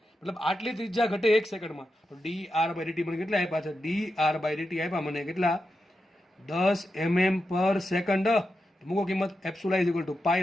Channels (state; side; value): normal; both; correlation 0.88